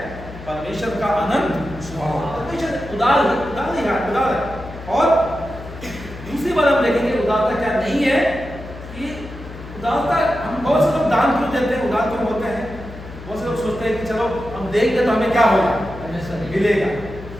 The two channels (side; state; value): left; noise; hum, 14 dB below the sound